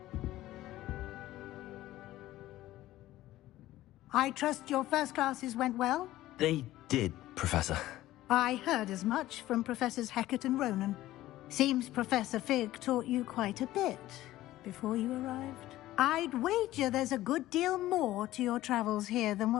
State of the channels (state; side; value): quieter; right; 15.4 dB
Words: I trust your first classes went well? They did, Professor. I heard as much from Professors Hecat and Ronan. Seems Professor Fig taught you quite a bit before you arrived. I'd wager there's a good deal more to your travels here than